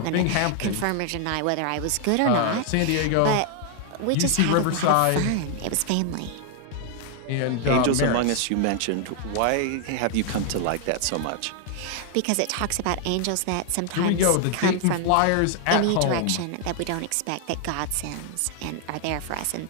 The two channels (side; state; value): both; different; correlation 0.00